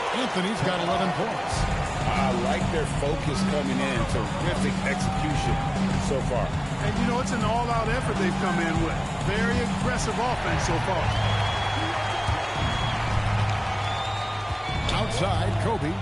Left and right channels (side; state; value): both; identical; correlation 1.00